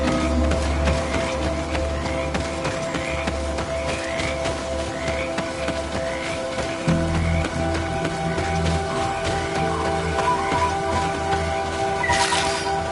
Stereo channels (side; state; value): both; identical; correlation 1.00